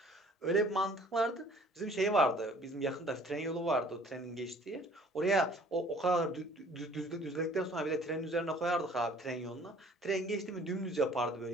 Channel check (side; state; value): both; normal; correlation 0.54